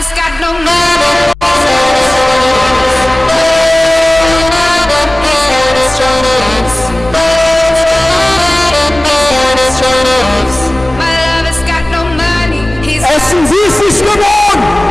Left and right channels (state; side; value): normal; both; correlation 0.98